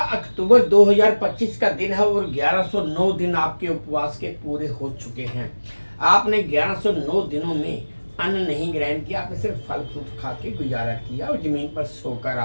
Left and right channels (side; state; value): both; inverted; correlation -1.00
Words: अक्टूबर 2025 का दिन है और 1109 दिन आपके उपवास के पूरे हो चुके हैं। आपने 1109 दिनों में अन्न नहीं ग्रहण किया, आपने सिर्फ फल फ्रूट खा के गुजारा किया और जमीन पर सोकर